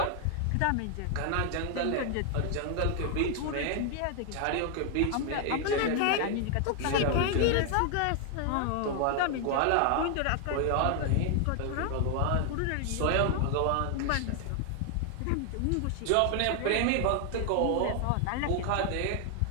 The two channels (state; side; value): different; both; correlation 0.00